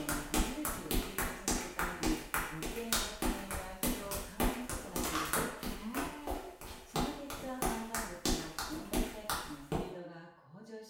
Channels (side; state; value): both; identical; correlation 1.00